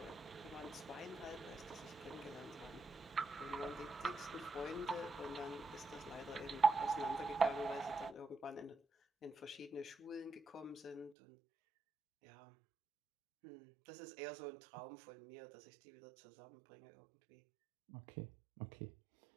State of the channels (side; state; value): left; drops out; at 11.2 s